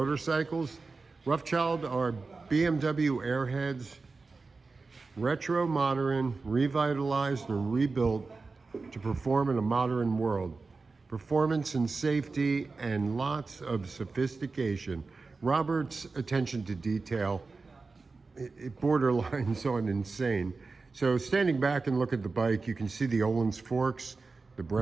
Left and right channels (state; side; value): quieter; left; 4.1 dB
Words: Roughchild are BMW airheads, retro modern, revitalized and rebuilt to perform in a modern world. Performance and safety and lots of sophistication. Robert's attention to detail, it borderlines on insane. So standing back and look at the bike, you can see the Ohlins forks, the